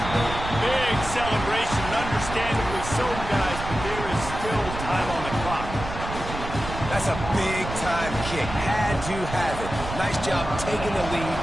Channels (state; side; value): noise; right; rumble, 8 dB below the sound